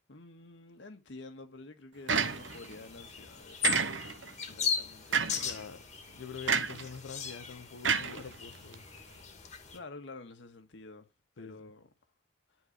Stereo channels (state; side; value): normal; both; correlation 0.05